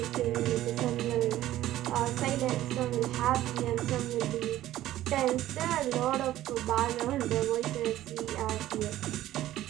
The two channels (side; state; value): left; quieter; 14.1 dB